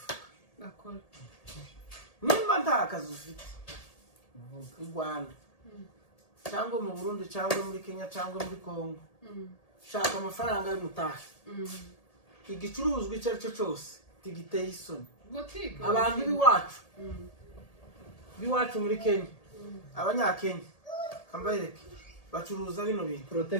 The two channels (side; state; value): right; late; 1.8 ms